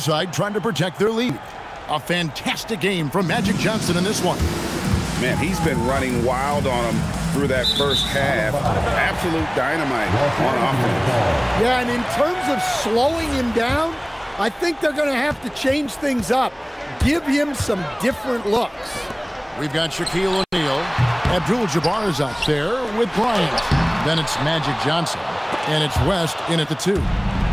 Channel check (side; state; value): both; identical; correlation 1.00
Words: side trying to protect their lead. A fantastic game from Magic Johnson in this one. Man, he's been running wild on him through that first half. Absolute dynamite on offense. Yeah, and in terms of slowing him down, I think they're going to have to change things up. Give him some different looks. We've got Shaquille O'Neal. Abdul-Jabbar is out there with Bryant. Then it's Magic Johnson. And it's West in at the 2.